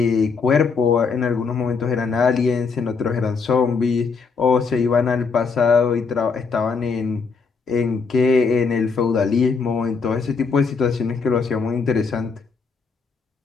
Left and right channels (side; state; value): right; quieter; 5.1 dB